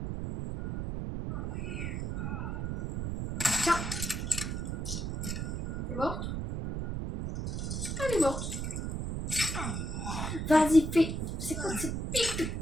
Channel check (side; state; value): right; noise; rumble, 3 dB below the sound